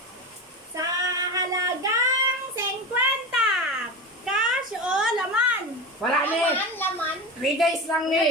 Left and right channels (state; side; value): normal; both; correlation 0.25